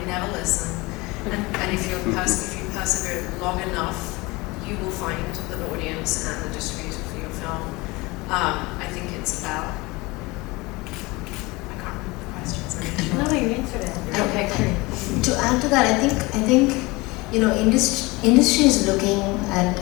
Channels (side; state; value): right; quieter; 23.4 dB